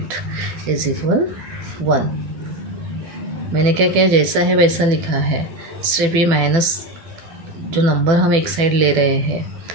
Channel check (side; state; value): left; late; 12 ms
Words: इज इक्वल 1। मैंने क्या किया, जैसा है वैसा लिखा है, सिर्फ ये माइनस जो नंबर हम एक साइड ले रहे हैं,